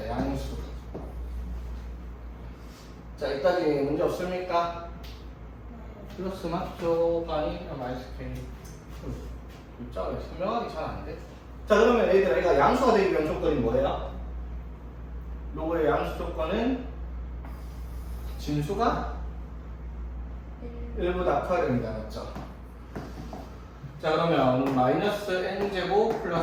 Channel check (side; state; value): both; identical; correlation 1.00